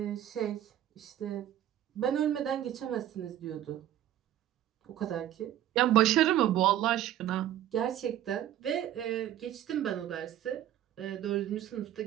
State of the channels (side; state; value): left; quieter; 11.9 dB